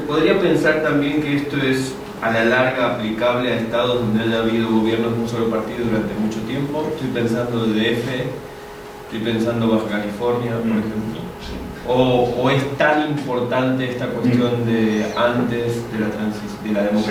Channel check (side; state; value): both; identical; correlation 1.00